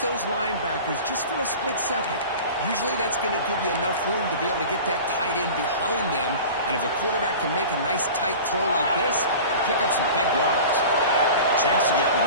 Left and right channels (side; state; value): both; inverted; correlation -0.37